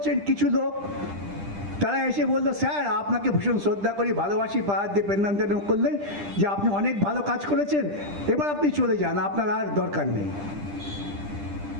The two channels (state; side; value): late; left; 10 ms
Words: কিছু লোক তারা এসে বললো, স্যার আপনাকে ভীষণ শ্রদ্ধা করি, ভালোবাসি, পাহাড় দিয়ে পেন্নাম করলেন যে আপনি অনেক ভালো কাজ করেছেন, এবার আপনি চলে যান, আপনার আর দরকার নেই।